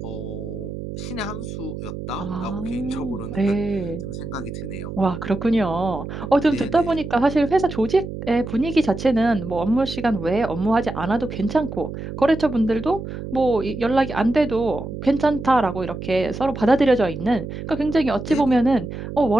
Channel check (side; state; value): right; noise; hum, 8 dB below the sound